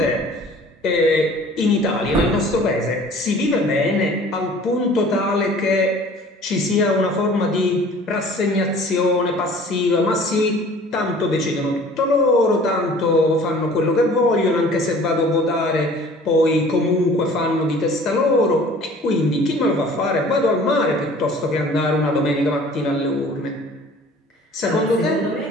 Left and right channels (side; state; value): both; normal; correlation 0.49